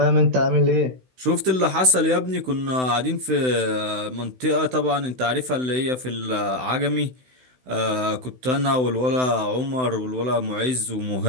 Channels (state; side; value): late; left; 16 ms